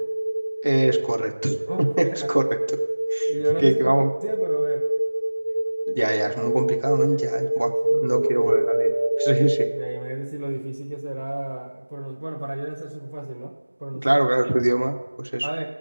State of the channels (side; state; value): both; inverted; correlation -1.00